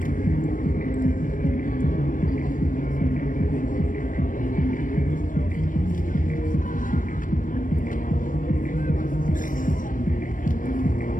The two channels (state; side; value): late; right; 0.38 ms